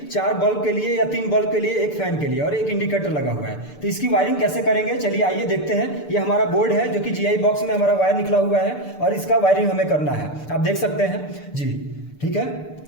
4 बल्ब के लिए या 3 बल्ब के लिए, 1 फैन के लिए और 1 इंडिकेटर लगा हुआ है। तो इसकी वायरिंग कैसे करेंगे, चलिए आइए देखते हैं। ये हमारा बोर्ड है जो कि जीआई बॉक्स में हमारा वायर निकला हुआ है और इसका वायरिंग हमें करना है। आप देख सकते हैं जी, ठीक है।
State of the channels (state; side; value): late; right; 6.8 ms